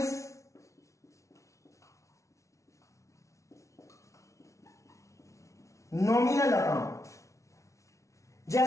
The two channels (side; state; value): right; late; 0.14 ms